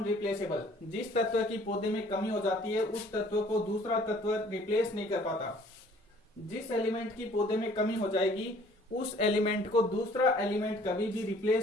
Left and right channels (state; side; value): normal; both; correlation 0.56